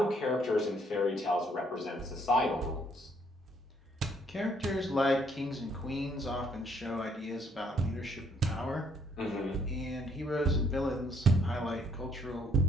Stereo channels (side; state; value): both; normal; correlation 0.67